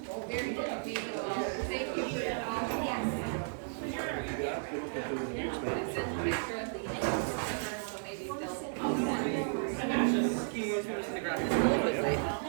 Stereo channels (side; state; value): left; silent; digital silence